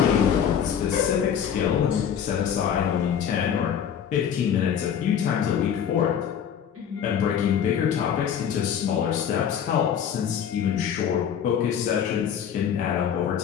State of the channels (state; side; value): quieter; right; 8.5 dB